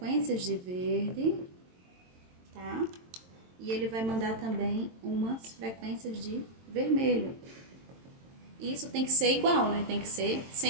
de verde, tá? E ele vai mandar também umas frequências de vermelho. Isso tem que ser igual, né? Tem que ser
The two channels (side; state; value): left; late; 22 ms